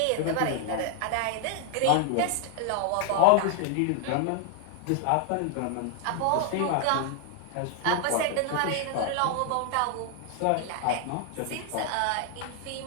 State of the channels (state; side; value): different; both; correlation 0.00